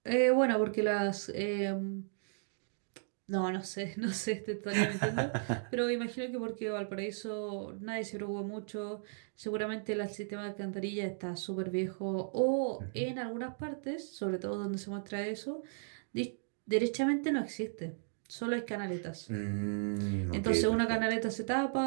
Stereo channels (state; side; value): silent; left; digital silence